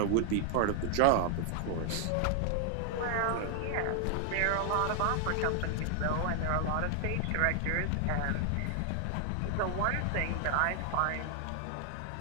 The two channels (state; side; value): different; both; correlation 0.00